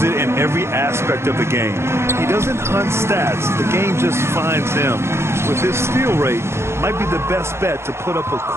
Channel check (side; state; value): left; late; 0.13 ms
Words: it in every aspect of the game. He doesn't hunt stats. The game just finds him. With his steal rate, might be the best bet to put up a